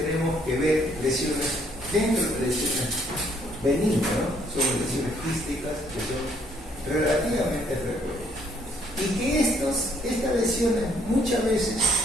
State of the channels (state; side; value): normal; both; correlation 0.66